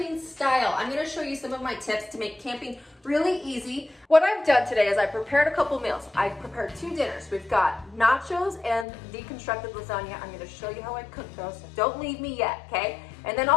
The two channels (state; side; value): drops out; right; at 8.8 s